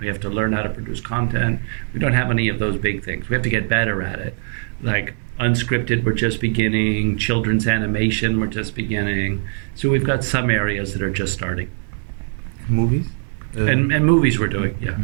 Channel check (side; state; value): left; silent; 59 dB below the other